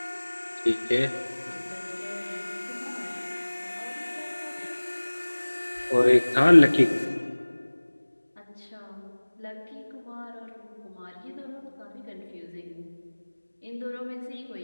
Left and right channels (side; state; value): both; inverted; correlation -1.00